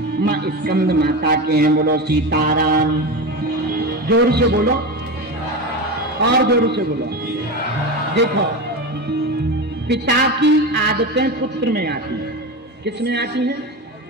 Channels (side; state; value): both; normal; correlation 0.22